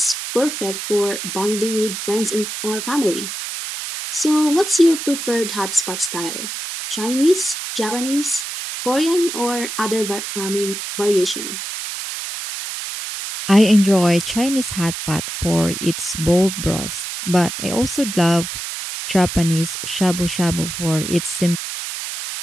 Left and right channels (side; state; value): right; noise; hiss, 6 dB below the sound